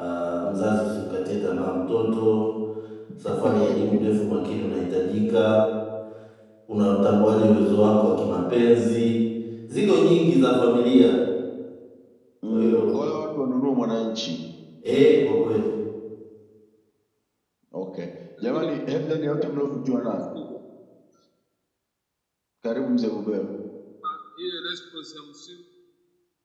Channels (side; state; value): both; identical; correlation 1.00